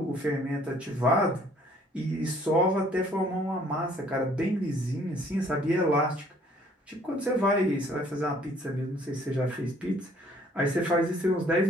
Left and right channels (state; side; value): normal; both; correlation 0.59